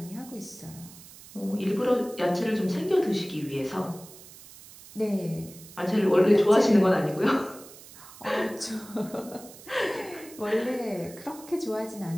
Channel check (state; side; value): noise; right; hiss, 19 dB below the sound